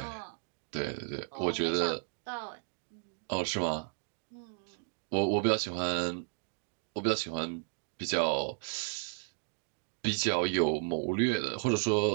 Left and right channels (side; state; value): left; silent; 55 dB below the other